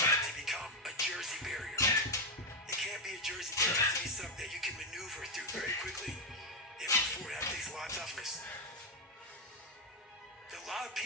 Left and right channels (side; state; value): both; normal; correlation 0.05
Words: to become a Jersey barrier. It can't be a Jersey barrier. It has to be something that you can maneuver through very quickly and move forward. That takes a lot of toughness. A lot of